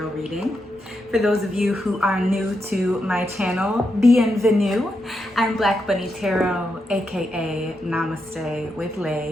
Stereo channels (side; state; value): both; normal; correlation 0.84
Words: reading. For those of you who are new to my channel, bienvenue. I'm Black Bunnie Tarot, aka Namaste with